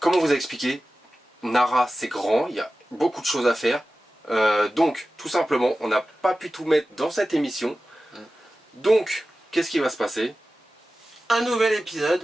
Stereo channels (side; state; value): both; normal; correlation 0.95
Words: on vous a expliqué, Nara c'est grand, il y a beaucoup de choses à faire. Donc, tout simplement, on n'a pas pu tout mettre dans cette émission. Donc, qu'est-ce qui va se passer? Un nouvel